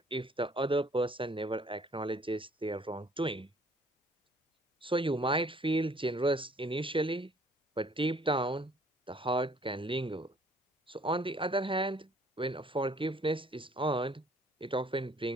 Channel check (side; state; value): both; normal; correlation 0.58